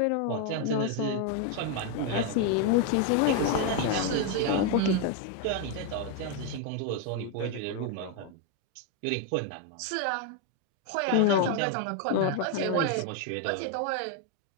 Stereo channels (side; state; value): both; different; correlation 0.01